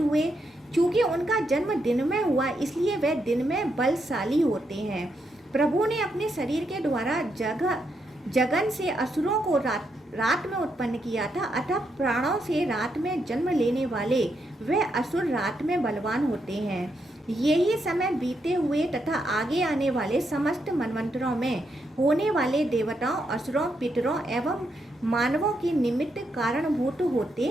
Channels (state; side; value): normal; both; correlation 0.80